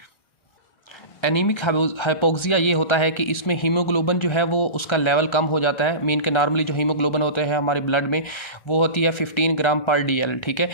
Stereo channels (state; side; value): late; right; 1.4 ms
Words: एनीमिक हाइपोक्सिया ये होता है कि इसमें हीमोग्लोबिन जो है वो उसका लेवल कम हो जाता है। मीन के नॉर्मली जो हीमोग्लोबिन होते हैं हमारे ब्लड में वो होती है 15 ग्राम पर DL। ठीक है,